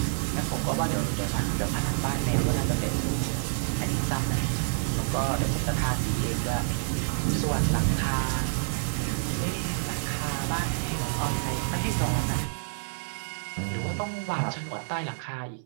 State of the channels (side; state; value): left; silent; 59 dB below the other